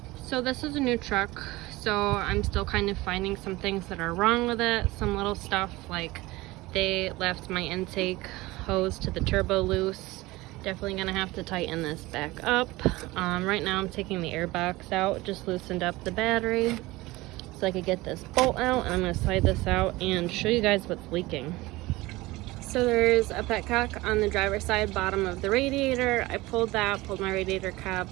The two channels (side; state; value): left; quieter; 20.1 dB